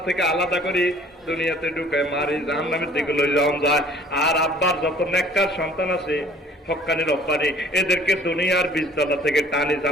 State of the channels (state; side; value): normal; both; correlation 0.54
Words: থেকে আলাদা করে দুনিয়াতে ঢুকায় মারি জাহান্নামের দিকে লই যাওয়া যায়। আর আব্বার যত নেককার সন্তান আছে হক্কানি রব্বানি এদেরকে দুনিয়ার বীজতলা থেকে টানি